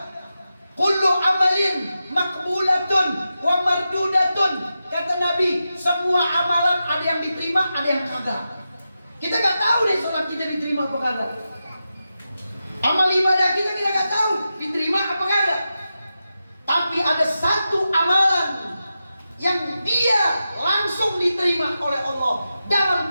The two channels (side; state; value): both; inverted; correlation -0.90